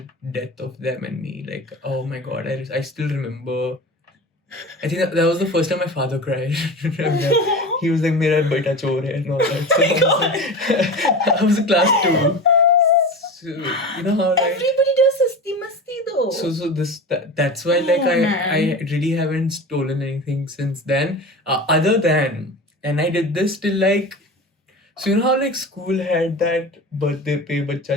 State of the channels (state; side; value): normal; both; correlation 0.30